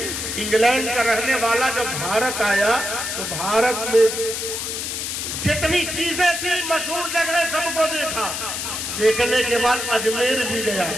इंग्लैंड का रहने वाला जब भारत आया तो भारत में जितनी चीजें थी मशहूर जगह सबको देखा। देखने के बाद अजमेर भी गया,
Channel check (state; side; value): noise; left; hiss, 4 dB below the sound